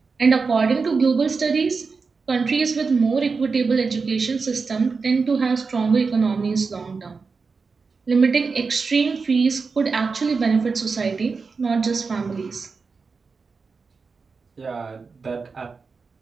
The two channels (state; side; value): quieter; left; 4.7 dB